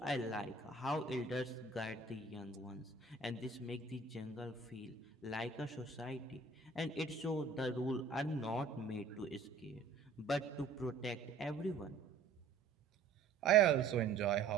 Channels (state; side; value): quieter; left; 4.5 dB